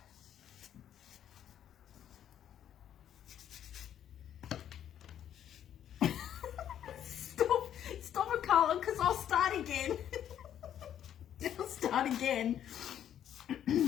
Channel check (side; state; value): right; quieter; 10.2 dB